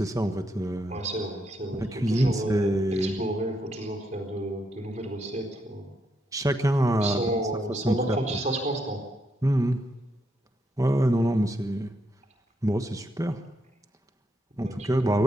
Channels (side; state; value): both; normal; correlation 0.79